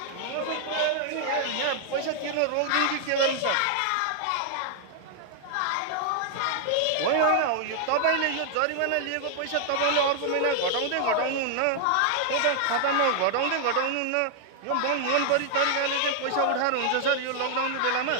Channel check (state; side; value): different; both; correlation -0.01